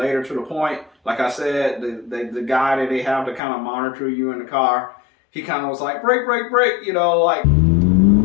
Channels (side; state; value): right; drops out; at 3.4 s